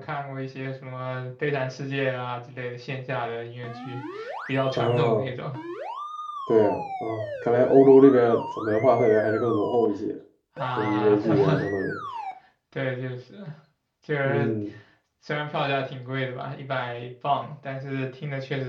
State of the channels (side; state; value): both; identical; correlation 1.00